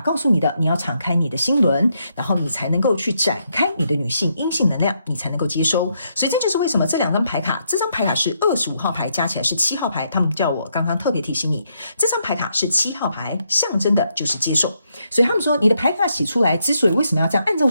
訴你的，你要敞開你的心輪，然後你才能夠去展開你的女性陰性能量，你才能夠接收。所以這就是為什麼這2張牌卡，這張牌卡是25號牌，加起來是7號牌。他們叫我剛剛特別提醒你，這張牌卡是7號牌，象徵的就是接受。所以他們說，你的牌卡寫出來，之所以為什麼要這樣按照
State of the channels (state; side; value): inverted; both; correlation -0.78